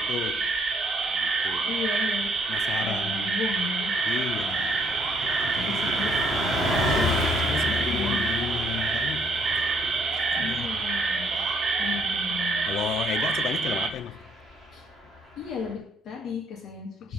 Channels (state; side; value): normal; both; correlation 0.67